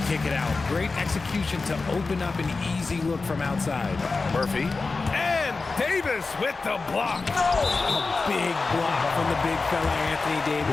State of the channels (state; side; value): quieter; right; 4.0 dB